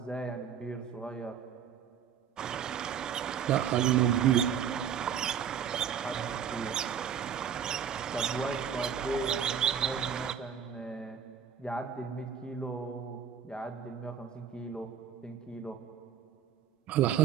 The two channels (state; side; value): quieter; left; 8.4 dB